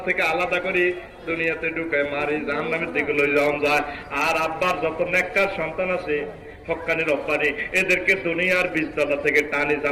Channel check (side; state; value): both; identical; correlation 1.00